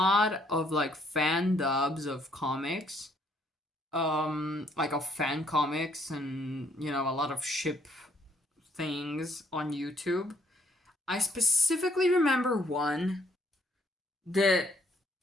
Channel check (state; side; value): normal; both; correlation 0.67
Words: of like fan dubs of comics. Like of fan comics and, a lot of ship things on YouTube. I specifically remember one that